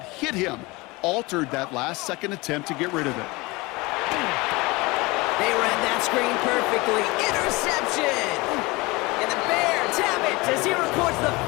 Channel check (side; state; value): right; quieter; 23.6 dB